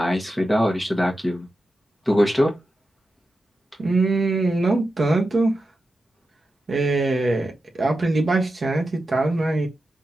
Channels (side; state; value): both; normal; correlation 0.90